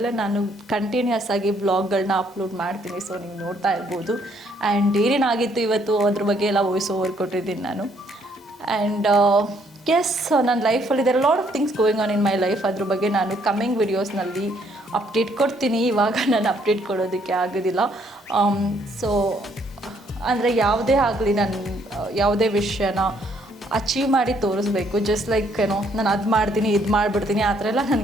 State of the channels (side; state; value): both; normal; correlation 0.68